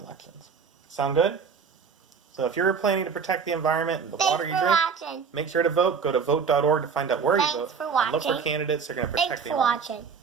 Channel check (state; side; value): quieter; left; 6.1 dB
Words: Sound good? So if you're planning to protect the environment and the water you drink, make sure to vote. Go to vote.org to find out where you vote. For watching. Look for candidates that are going to protect the environment. Thanks for watching.